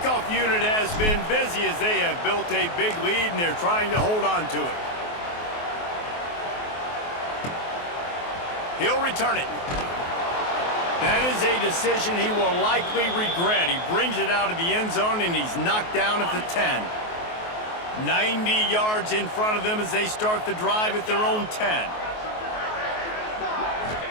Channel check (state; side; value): late; right; 23 ms